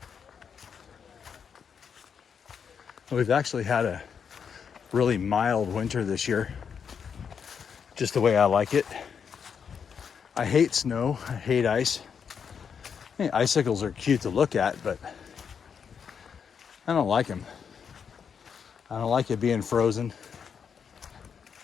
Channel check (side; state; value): right; quieter; 6.9 dB